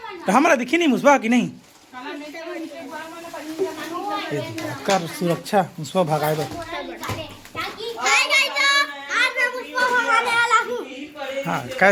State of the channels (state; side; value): identical; both; correlation 1.00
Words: तो हमारा दिखी नहीं मुसवा की नहीं कर सुरक्षा मुसवा भगाए दो हाँ